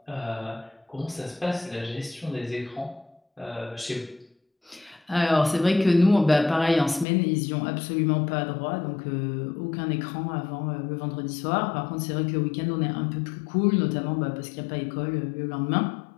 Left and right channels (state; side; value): drops out; right; at 7.1 s